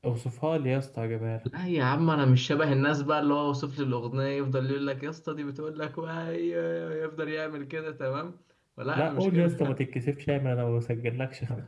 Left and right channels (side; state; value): both; identical; correlation 1.00